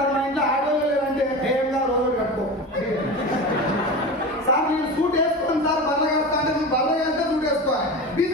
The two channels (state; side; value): normal; both; correlation 0.28